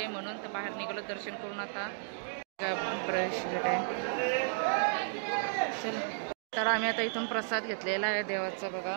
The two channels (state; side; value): silent; left; digital silence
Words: म्हणून. तर बाहेर निघालो दर्शन करून. आता प्रवेश आहे. चल तर आम्ही आता इथून प्रसाद घेतलेला आहे देवाचा बघा.